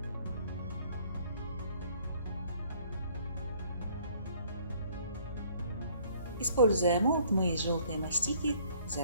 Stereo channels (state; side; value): inverted; both; correlation -0.60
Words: Используя молд, мы из желтой мастики